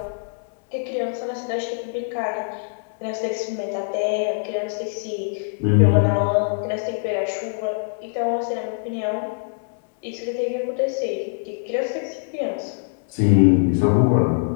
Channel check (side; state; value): right; silent; digital silence